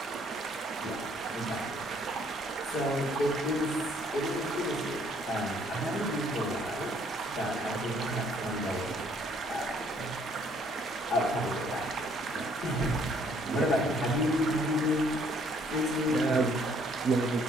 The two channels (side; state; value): both; normal; correlation 0.64